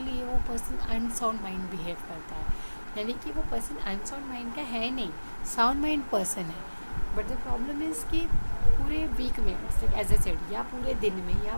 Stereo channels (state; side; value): inverted; both; correlation -1.00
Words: लिए वो पर्सन अनसाउंड माइंड बिहेव करता है. यानी कि वो पर्सन अनसाउंड माइंड का है नहीं, साउंड माइंड पर्सन है. बट द प्रॉब्लम इज़ कि पूरे वीक में, एज ए सेड, या पूरे दिन में या